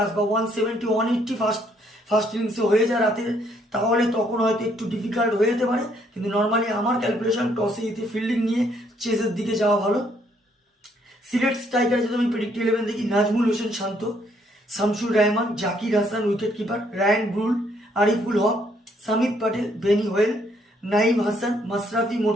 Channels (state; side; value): normal; both; correlation 0.69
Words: বা 170 180 ফার্স্ট ইনিংসে হয়ে যায় রাতে, তাহলে তখন হয়তো একটু ডিফিকাল্ট হয়ে যেতে পারে। কিন্তু নর্মালি আমার ক্যালকুলেশন টসে জিতে ফিল্ডিং নিয়ে চেসের দিকে যাওয়া ভালো। সিলেট স্ট্রাইকার যদি আমি প্রেডিক্ট 11 দেখি, Najmul Hossain Shanto, Shamsur Rahman, Zakir Hasan wicket keeper, Ryan Burl, Ariful Haque, Samit Patel, Benny Howell, Naim Hasan, Mashrafe